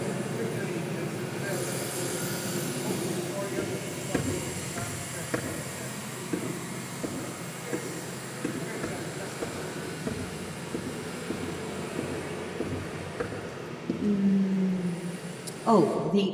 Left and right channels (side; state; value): both; identical; correlation 1.00